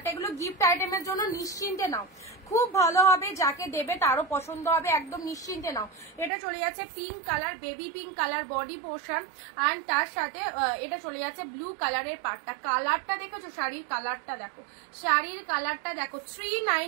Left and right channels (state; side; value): drops out; left; at 6.3 s